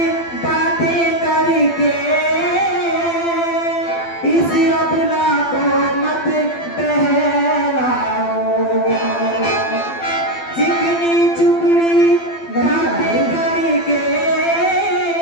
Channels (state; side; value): late; right; 12 ms